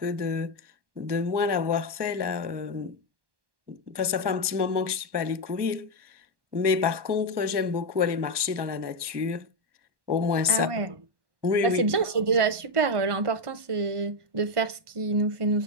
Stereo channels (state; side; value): late; left; 1.1 ms